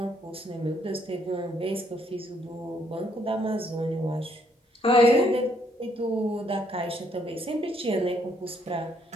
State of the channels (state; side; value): normal; both; correlation 0.70